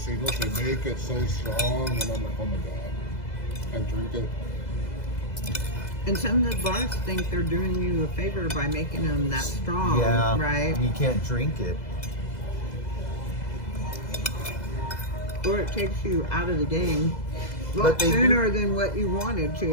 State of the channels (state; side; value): late; right; 2.0 ms